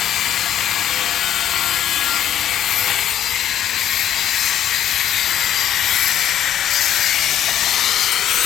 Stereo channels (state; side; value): quieter; right; 10.8 dB